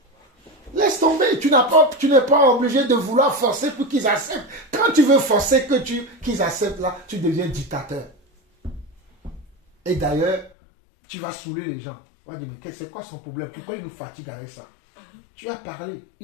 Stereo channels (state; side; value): drops out; right; at 10.5 s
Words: Laisse tomber. Tu n'es pas obligé de vouloir forcer pour qu'ils acceptent. Quand tu veux forcer qu'ils acceptent là, tu deviens dictateur. Et d'ailleurs, tu vas saouler les gens. On va dire, mais c'est quoi son problème? Pourquoi il nous fatigue avec ça? Tu as parlé,